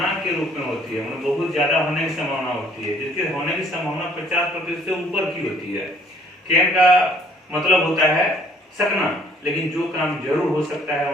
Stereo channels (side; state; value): both; normal; correlation 0.59